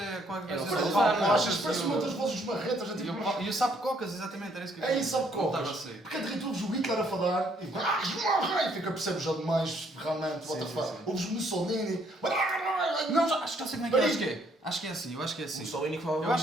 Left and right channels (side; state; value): both; normal; correlation 0.67